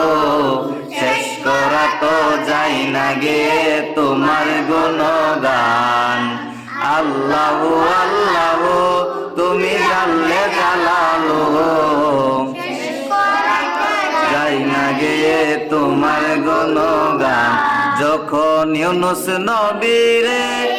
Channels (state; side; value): identical; both; correlation 1.00